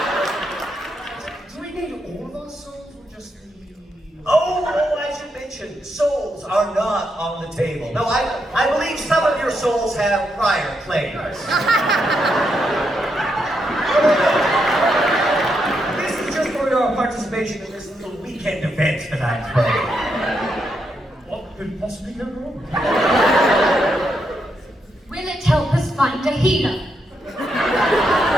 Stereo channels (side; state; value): both; normal; correlation 0.81